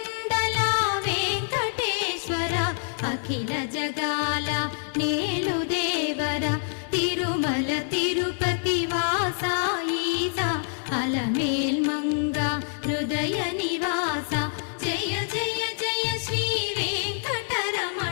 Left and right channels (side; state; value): right; silent; digital silence